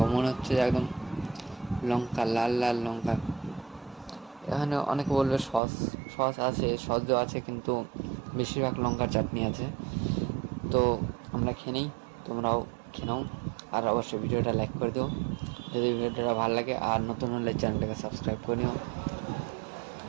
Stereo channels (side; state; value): left; drops out; at 5.6 s